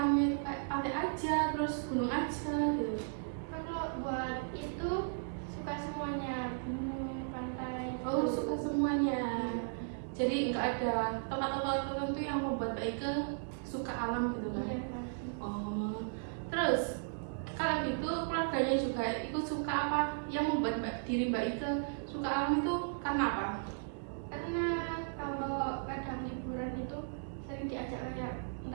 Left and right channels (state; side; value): silent; left; digital silence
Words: itu kayak pantai aja, terus gunung aja gitu? Kalau buat itu suka semuanya, gunung, pantai. Oh suka semuanya. Jadi nggak ada tempat-tempat tertentu yang membuat Mbak Ike suka alam gitu kan? Iya. Oh, terus kalau gitu keluarganya juga ikut suka apa? Yang membuat diri Mbak Ike suka alam itu karena apa? Karena kalau kadang liburan itu sering diajak kayak